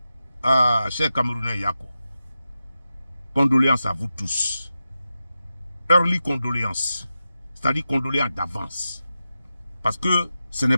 Ah, chers Camerounais Yako. Condoléances à vous tous. Early condoléances. C'est-à-dire condoléances d'avance. Parce que ce n'est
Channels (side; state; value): both; inverted; correlation -0.91